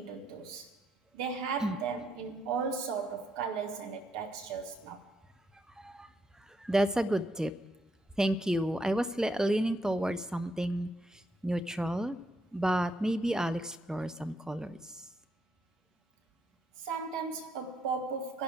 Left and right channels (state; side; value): normal; both; correlation 0.77